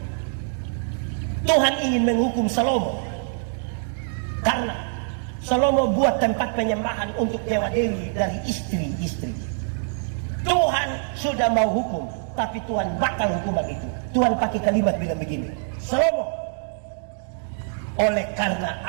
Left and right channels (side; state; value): left; silent; 62 dB below the other